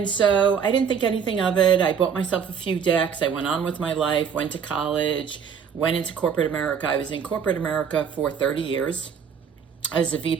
so I didn't think anything of it. I bought myself a few decks. I went on with my life, went to college, went into corporate America. I was in corporate America for 30 years. As a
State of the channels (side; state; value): left; quieter; 7.0 dB